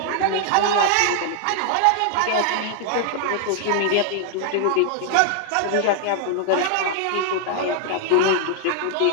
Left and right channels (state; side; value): different; both; correlation 0.00